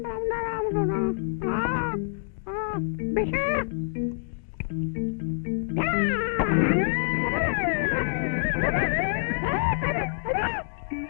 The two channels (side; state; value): right; silent; digital silence